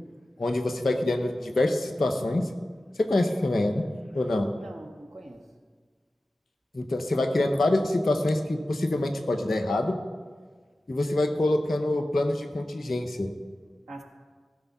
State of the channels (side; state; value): both; normal; correlation 0.95